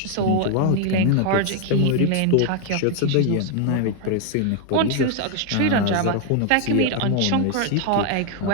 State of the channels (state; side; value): different; both; correlation 0.01